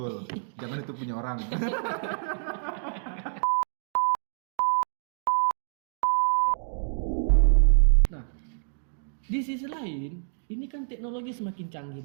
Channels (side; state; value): left; silent; digital silence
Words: Jangan itu punya orang. Nah, di sisi lain, ini kan teknologi semakin canggih